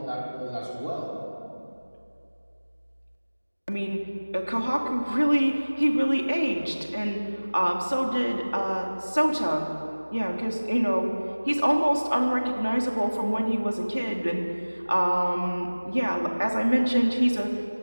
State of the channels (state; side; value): inverted; both; correlation -1.00